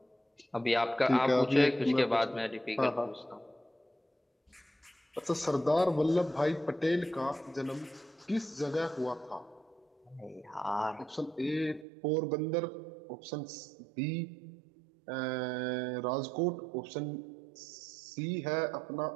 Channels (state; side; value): drops out; left; at 11.9 s